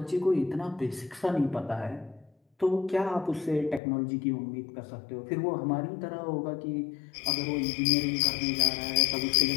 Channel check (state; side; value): drops out; right; at 3.8 s